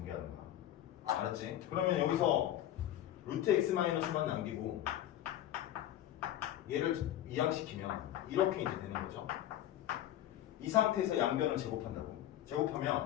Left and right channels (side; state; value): right; quieter; 12.4 dB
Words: 거야. 알았지? 그러면 여기서 루트 x-만 남기고 얘를 이항시키면 이렇게 이제 되는 거죠. 이 상태에서 양변을 제곱한다고.